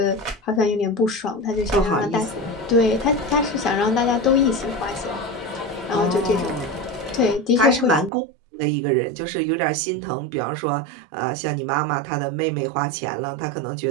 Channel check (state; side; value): drops out; left; at 8.1 s